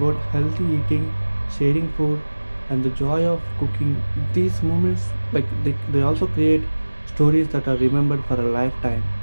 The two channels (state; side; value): inverted; both; correlation -1.00